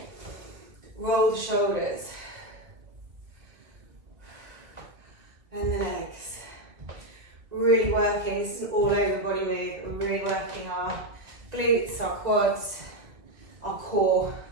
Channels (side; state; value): left; late; 1.6 ms